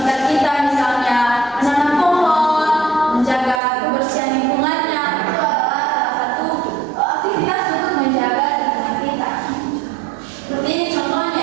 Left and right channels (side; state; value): left; drops out; at 3.6 s